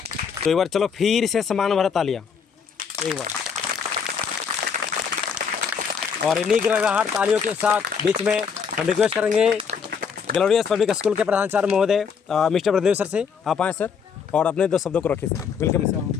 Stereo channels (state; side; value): quieter; right; 6.4 dB